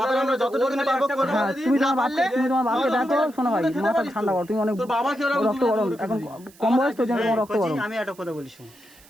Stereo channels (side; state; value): right; noise; hiss, 26 dB below the sound